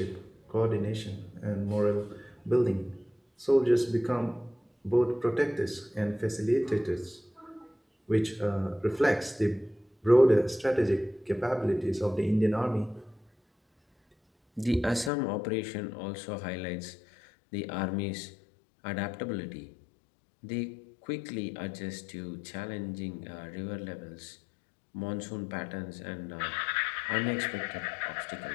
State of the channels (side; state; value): right; drops out; at 15.1 s